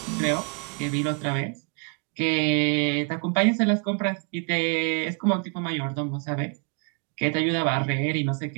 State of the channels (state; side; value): quieter; left; 39.5 dB